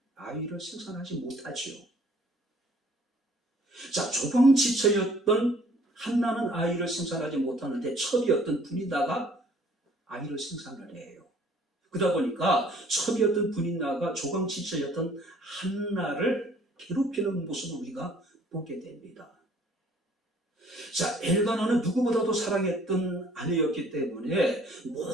아이를 생산하지 못하지요. 자, 조방지처였던 한나는 아이를 생산하지 못하는데 첩이었던 분이다가 아이를 생산을 해요. 그러다 보니까 첩이었던 분이다가 조방지처였던 한나를 괴롭히는 모습을 우리가 보게 됩니다. 자, 엘가나는 누구보다도 사랑했던 아내였기 때문에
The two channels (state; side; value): normal; both; correlation 0.57